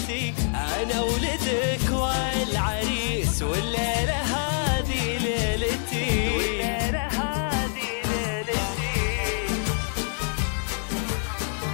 انا ولدك والعريس والليلة هذه ليلتي، والليلة هذه ليلتي.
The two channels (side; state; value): right; silent; digital silence